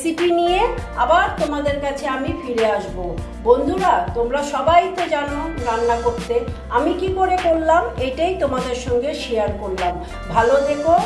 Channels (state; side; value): identical; both; correlation 1.00